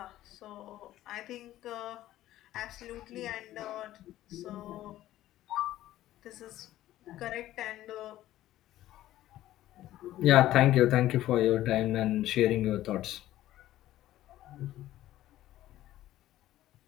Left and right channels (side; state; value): right; quieter; 14.2 dB